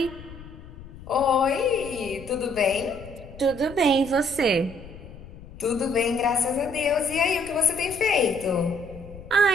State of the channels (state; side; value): noise; left; rumble, 17 dB below the sound